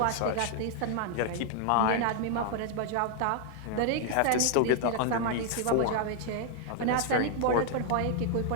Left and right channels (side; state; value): both; different; correlation 0.00